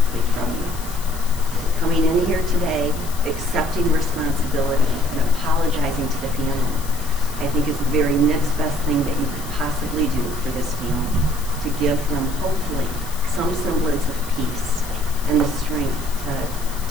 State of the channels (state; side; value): noise; left; hiss, 14 dB below the sound